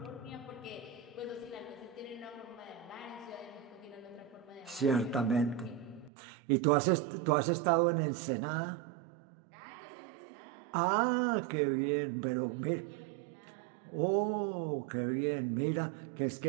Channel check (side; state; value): left; drops out; at 6.1 s